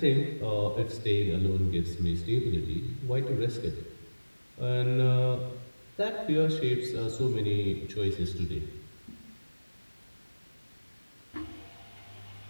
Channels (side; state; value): both; inverted; correlation -1.00